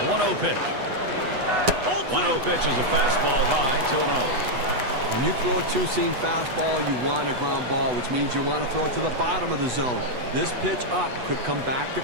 The 1-0 pitch. 1-0 pitch is a fastball high, 2-0. When you throw a two-seam fastball, you want a ground ball, which means you want to throw it to the bottom of the zone. This pitch up could come back to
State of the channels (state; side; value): late; left; 8.1 ms